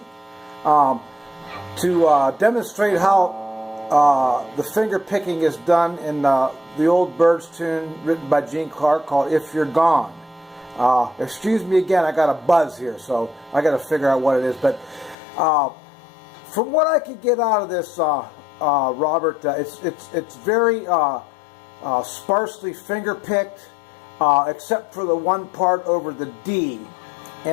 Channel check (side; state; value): right; drops out; at 15.2 s